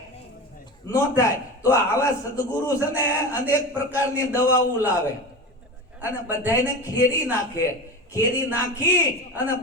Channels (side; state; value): both; normal; correlation 0.27